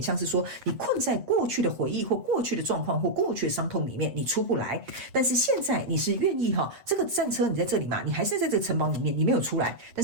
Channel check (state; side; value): late; left; 8.0 ms